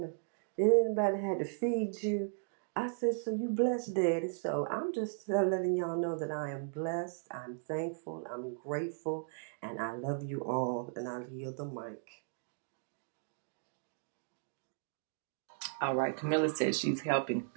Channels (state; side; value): silent; left; digital silence